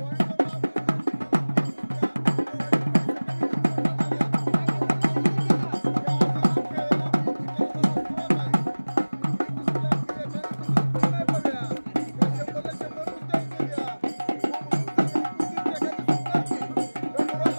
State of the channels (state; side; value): inverted; both; correlation -1.00